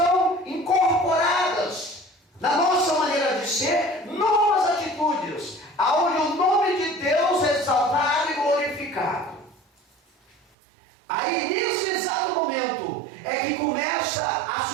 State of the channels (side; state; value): left; drops out; at 10.4 s